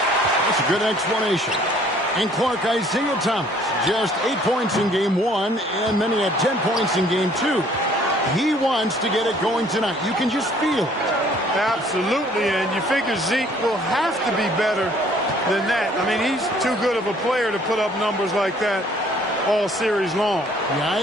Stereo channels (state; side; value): normal; both; correlation 0.58